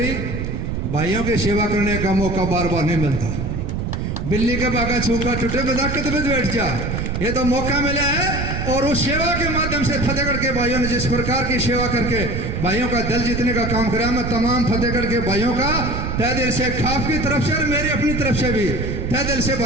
भाइयों की सेवा करने का मौका बार बार नहीं मिलता। बिल्ली के बागा छूका टूटे बजा के तो बैठ जा, ये तो मौका मिला है। और उस सेवा के माध्यम से फतेहगढ़ के भाइयों ने जिस प्रकार की सेवा करके भाइयों का दिल जीतने का काम करा, मैं तमाम फतेहगढ़ के भाइयों का तहे दिल से, खाप की तरफ से और मेरी अपनी तरफ से भी तहे दिल से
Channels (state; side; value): noise; right; rumble, 3 dB below the sound